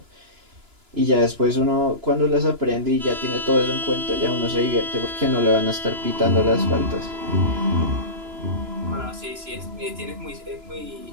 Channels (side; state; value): left; late; 2.9 ms